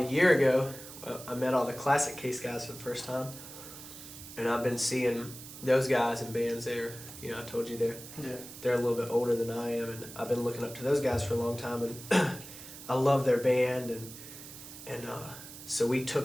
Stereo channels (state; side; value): noise; right; hiss, 14 dB below the sound